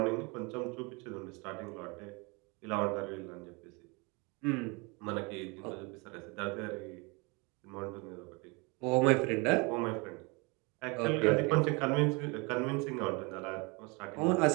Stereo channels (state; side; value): quieter; left; 28.7 dB